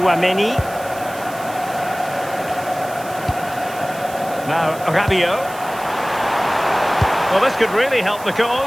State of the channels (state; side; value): noise; right; hiss, 17 dB below the sound